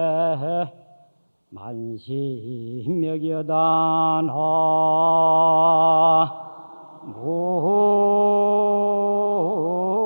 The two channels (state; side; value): inverted; both; correlation -1.00